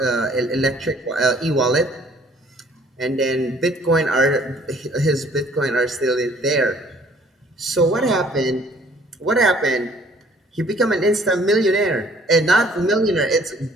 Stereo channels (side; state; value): both; normal; correlation 0.57